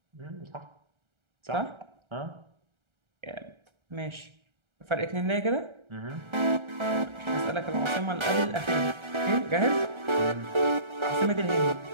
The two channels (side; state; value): left; late; 1.3 ms